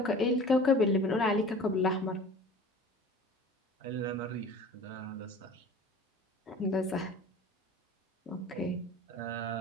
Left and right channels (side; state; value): both; normal; correlation 0.42